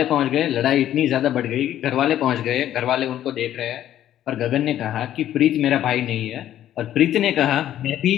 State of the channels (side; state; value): right; quieter; 11.9 dB